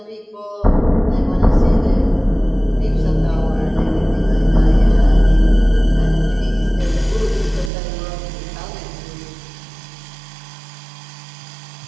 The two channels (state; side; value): drops out; left; at 7.7 s